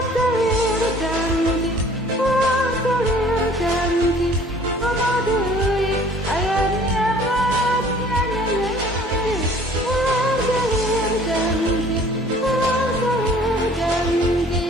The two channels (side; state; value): both; normal; correlation 0.52